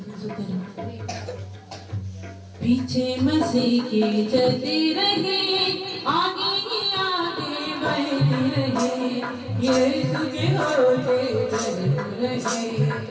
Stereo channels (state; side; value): identical; both; correlation 1.00